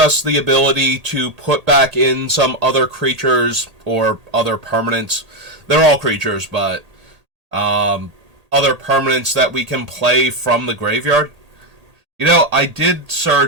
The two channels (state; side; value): late; left; 1.8 ms